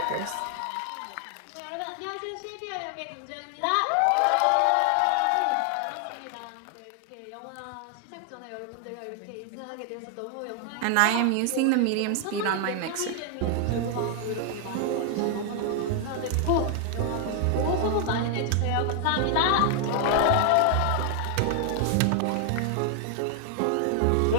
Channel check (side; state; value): both; different; correlation 0.00